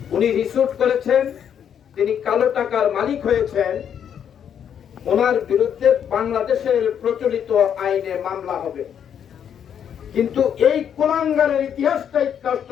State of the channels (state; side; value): quieter; right; 8.6 dB